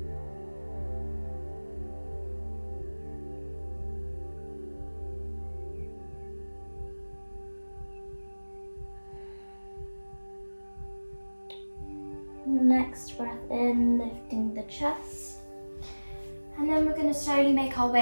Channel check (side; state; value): both; inverted; correlation -1.00